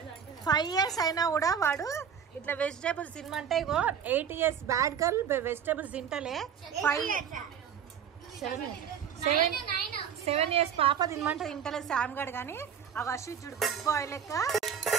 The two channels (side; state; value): left; quieter; 7.8 dB